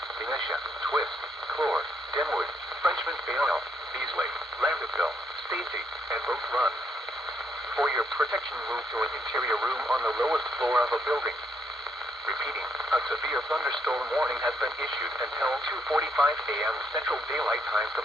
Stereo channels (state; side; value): normal; both; correlation 0.74